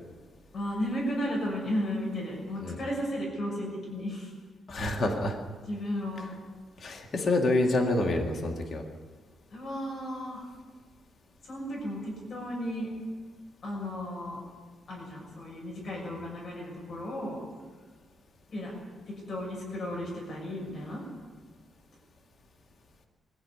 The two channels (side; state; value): both; normal; correlation 0.77